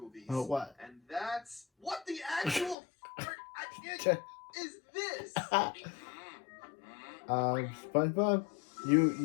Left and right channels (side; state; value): right; drops out; at 2.8 s